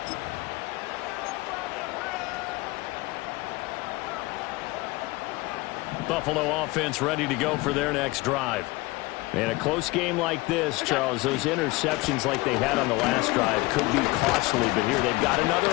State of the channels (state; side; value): quieter; right; 22.0 dB